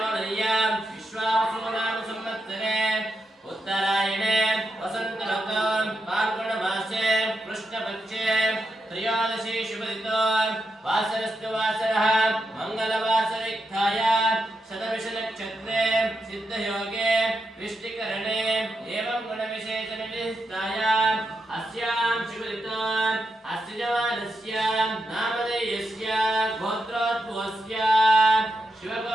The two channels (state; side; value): normal; both; correlation 0.85